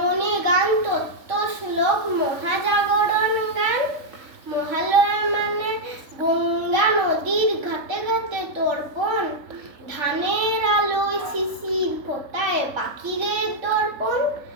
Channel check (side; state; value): left; late; 3.9 ms